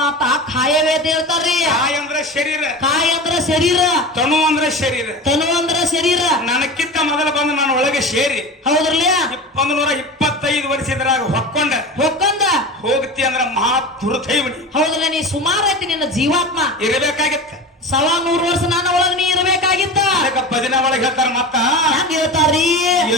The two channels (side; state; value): both; normal; correlation 0.30